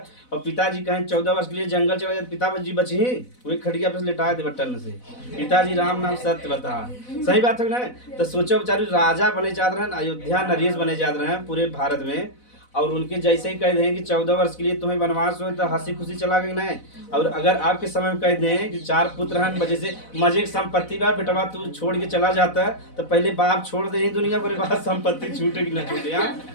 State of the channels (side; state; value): right; late; 4.0 ms